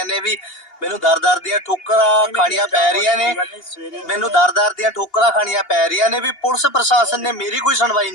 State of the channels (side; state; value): right; late; 2.8 ms